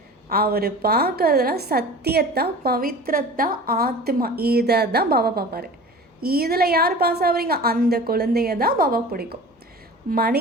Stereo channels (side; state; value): both; normal; correlation 0.39